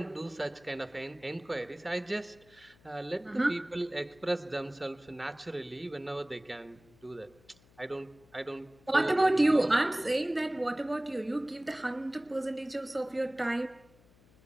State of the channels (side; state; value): left; noise; hum, 28 dB below the sound